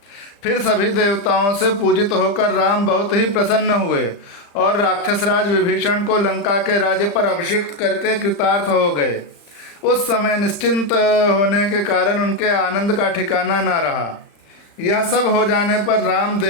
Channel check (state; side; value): late; right; 35 ms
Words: फिर सभी देवताओं से पूजित होकर राम बहुत ही प्रसन्न हुए और राक्षसराज विभीषण को लंका के राज्य पर अभिषिक्त करके कृतार्थ हो गए। उस समय निश्चिंत होने के कारण उनके आनंद का ठिकाना न रहा। यह सब हो जाने पर राम